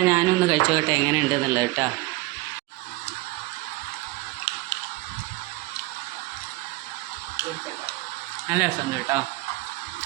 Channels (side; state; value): left; quieter; 20.8 dB